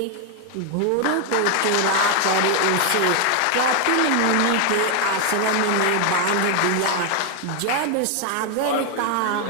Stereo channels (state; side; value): different; both; correlation 0.01